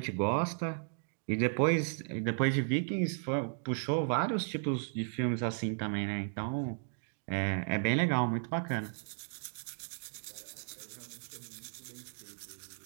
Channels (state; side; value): silent; left; digital silence